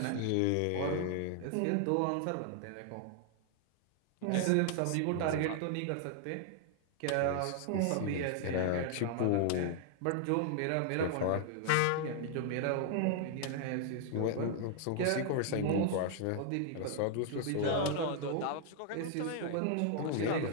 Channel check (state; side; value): different; both; correlation 0.00